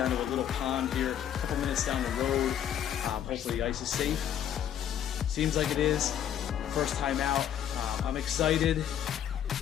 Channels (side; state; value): right; quieter; 10.0 dB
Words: to a little pond here, a couple minutes down the road. Hopefully the ice is safe. Seems like it is. First time out. I'm excited,